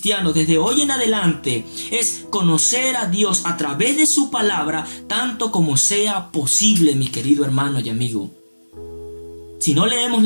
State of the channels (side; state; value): both; inverted; correlation -1.00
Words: desde hoy en adelante es conocer a Dios a través de su palabra tanto como sea posible, mi querido hermano y amigo. Si no leemos